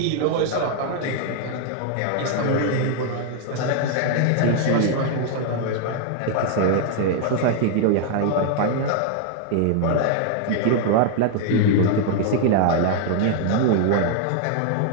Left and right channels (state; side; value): different; both; correlation 0.00